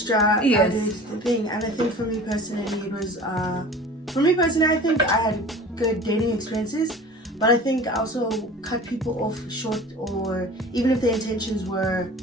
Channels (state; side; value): normal; both; correlation 0.41